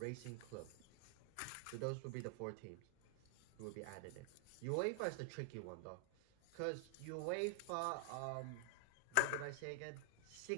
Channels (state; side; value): different; both; correlation 0.00